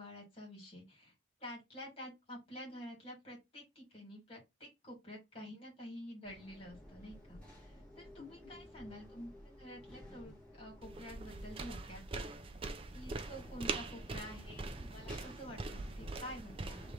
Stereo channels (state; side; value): normal; both; correlation 0.48